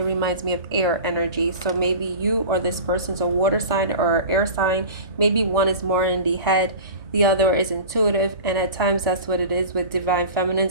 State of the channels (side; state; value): both; inverted; correlation -0.36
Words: reminds me of air energy. So maybe you or this person's a water sign or air sign. Maybe one is more in the head, the other is intuitive, and at times that's what it is with divine